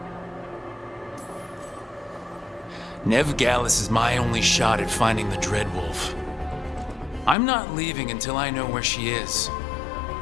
Veilguard is my only shot at finding the Dreadwolf. I'm not leaving until I know where she is.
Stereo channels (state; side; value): drops out; right; at 7.4 s